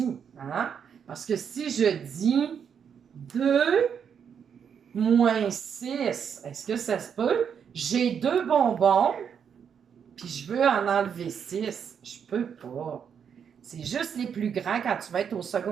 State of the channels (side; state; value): left; quieter; 7.5 dB